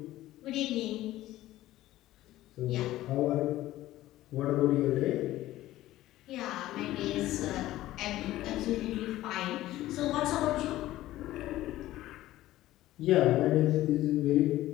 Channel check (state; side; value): quieter; right; 15.4 dB